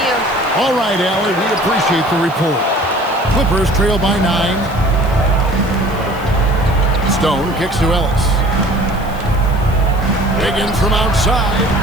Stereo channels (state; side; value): noise; right; hiss, 23 dB below the sound